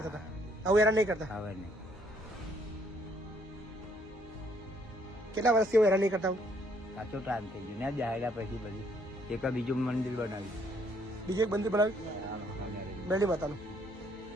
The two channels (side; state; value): both; normal; correlation 0.67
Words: હતા. હવે હેરાન નહીં કરતા. હવે નહીં. કેટલા વર્ષથી એવું હેરાન નહીં કરતા? સાચો ટાઈમ થઈ ગયો ને જાહેરા પછી બધી એક બીજું મંદિર બનાવ્યું. બીજું એક મંદિર બનાવ્યું, બેલી માતાનું.